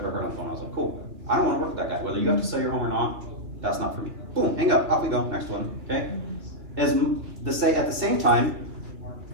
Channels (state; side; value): late; left; 2.9 ms